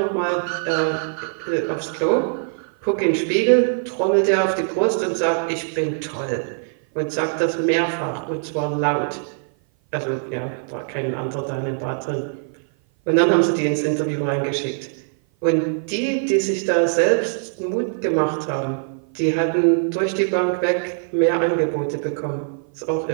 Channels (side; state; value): left; silent; 56 dB below the other